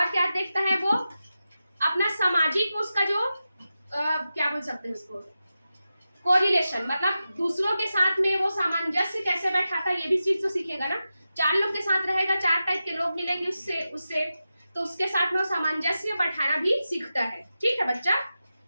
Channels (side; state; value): both; inverted; correlation -0.92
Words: क्या देखता है वो, अपना सामाजिक उसका जो क्या बोल सकते हैं उसको, कोरिलेशन, मतलब दूसरों के साथ में वो सामंजस्य कैसे बैठाता है, ये भी चीज तो सीखेगा ना। चार लोग के साथ रहेगा, चार टाइप के लोग मिलेंगे उससे तो उसके साथ में वो सामंजस्य बैठाना भी सीखता है। ठीक है बच्चा,